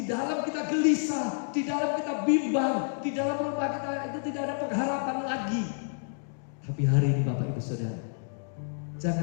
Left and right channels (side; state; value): right; silent; digital silence